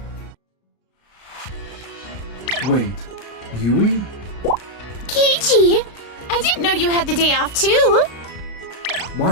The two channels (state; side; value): late; right; 33 ms